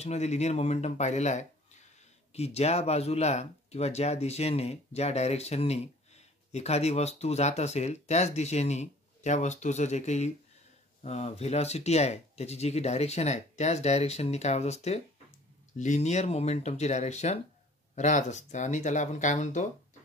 मध्ये linear momentum पाहिलेला आहे की ज्या बाजूला किंवा ज्या दिशेने ज्या डायरेक्शननी एखादी वस्तू जात असेल त्याच दिशेने त्या वस्तूचं जे काही व्हेलॉसिटी आहे त्याची जी काही डायरेक्शन आहे त्याच डायरेक्शननी काय होत असते लिनियर मोमेंटमची डायरेक्शन राहत असते आणि त्याला आपण काय म्हणतो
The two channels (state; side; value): normal; both; correlation 0.51